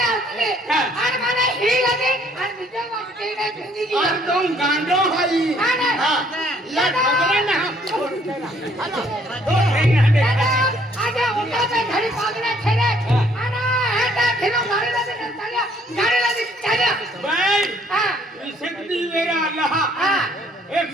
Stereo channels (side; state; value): both; normal; correlation 0.63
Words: आते और माने ही लगे और बीजे वाटे नहीं जिंदगी और तुम गांडो हाई या खबरे ना दादा आज उठा पे घड़ी पागले खेले आना हेटा खिलो गाड़ी लगे चलिया बाई हां विशक्ति मेरा अल्लाह एक